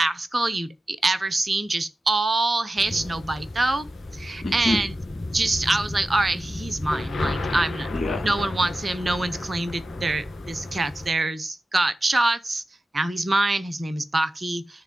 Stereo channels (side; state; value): both; normal; correlation 0.94